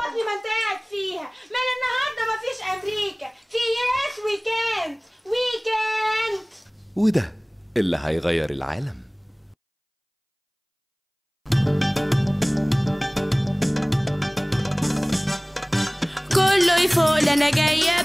ما انت قاعد فيها، من النهارده مفيش امريكا، في يس وي كانت وي كانت. وده اللي هيغير العالم. كله يفوق انا جايه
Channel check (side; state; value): both; identical; correlation 1.00